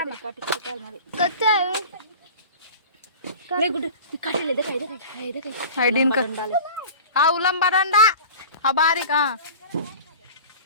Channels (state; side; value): inverted; both; correlation -0.38